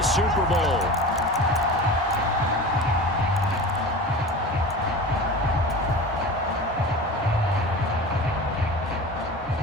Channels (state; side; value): normal; both; correlation 0.33